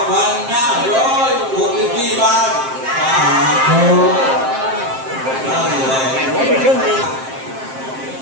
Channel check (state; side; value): late; left; 7.6 ms